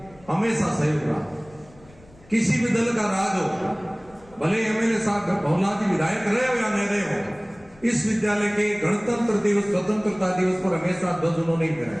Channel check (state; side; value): noise; left; rumble, 25 dB below the sound